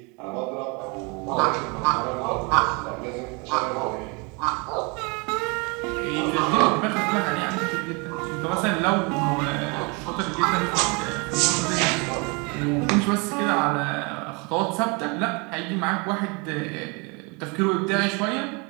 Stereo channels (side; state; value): left; quieter; 30.5 dB